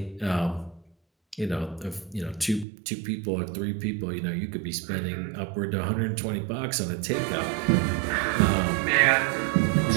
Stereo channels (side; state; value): left; drops out; at 2.7 s